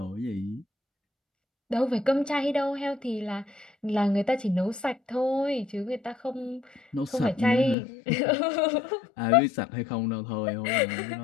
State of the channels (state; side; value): drops out; right; at 7.8 s